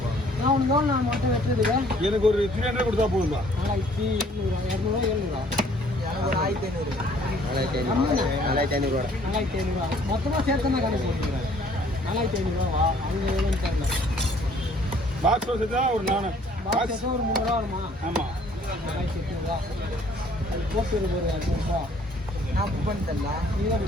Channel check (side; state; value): both; normal; correlation 0.59